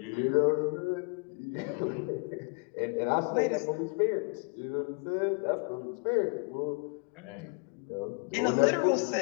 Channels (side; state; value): right; quieter; 36.8 dB